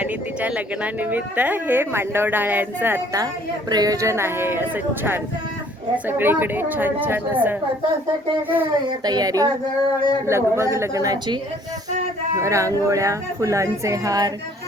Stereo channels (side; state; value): both; normal; correlation 0.58